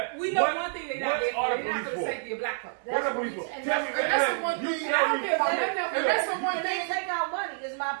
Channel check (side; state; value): left; silent; digital silence